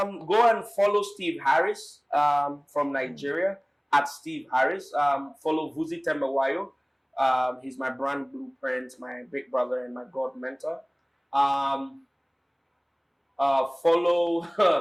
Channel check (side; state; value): both; identical; correlation 1.00